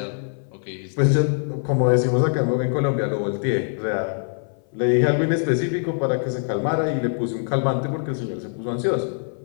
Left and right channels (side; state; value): right; silent; 58 dB below the other